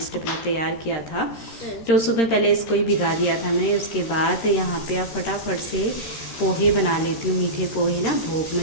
मैंने तैयार किया था। तो सुबह पहले इसको ही भिगा दिया था मैंने। उसके बाद यहाँ पे आप फटाफट से पोहे बना लेती हूँ। मीठे पोहे ना भोग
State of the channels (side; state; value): right; late; 13 ms